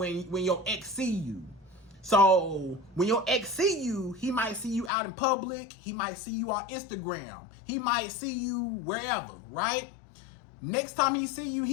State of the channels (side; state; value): right; drops out; at 4.9 s